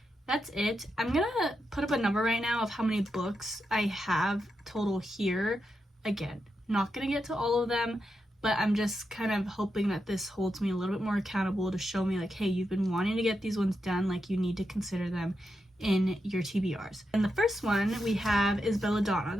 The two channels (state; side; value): normal; both; correlation 0.86